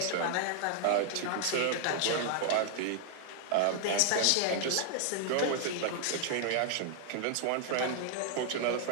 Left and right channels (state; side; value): different; both; correlation 0.00